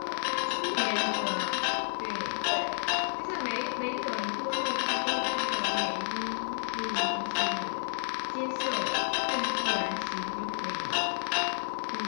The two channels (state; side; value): silent; right; digital silence